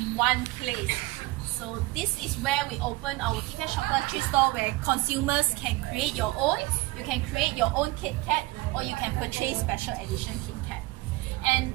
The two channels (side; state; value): left; quieter; 21.0 dB